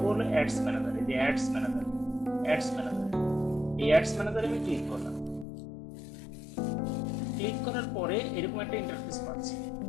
হলো অ্যাডস ম্যানেজার। এই যে অ্যাডস ম্যানেজার, এই অ্যাডস ম্যানেজারে আমি ক্লিক করলাম। ক্লিক করার পরে এরকম একটা ইন্টারফেস পাচ্ছি।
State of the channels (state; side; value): drops out; right; at 5.5 s